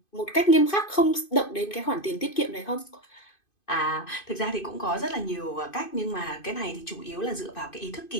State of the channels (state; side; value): late; right; 2.5 ms